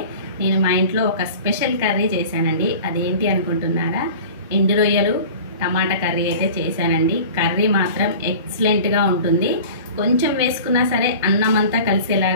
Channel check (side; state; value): both; inverted; correlation -0.39